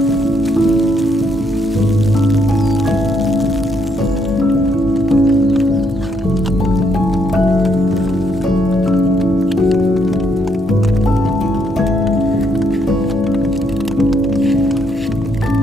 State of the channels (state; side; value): normal; both; correlation 0.73